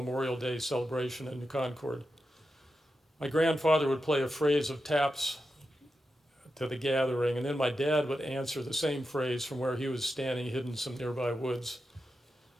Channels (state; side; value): normal; both; correlation 0.89